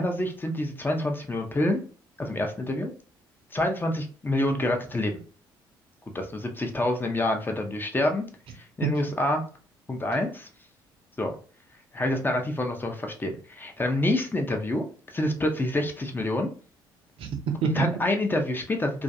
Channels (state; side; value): normal; both; correlation 0.73